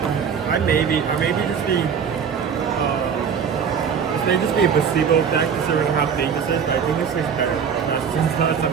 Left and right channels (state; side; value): quieter; left; 6.9 dB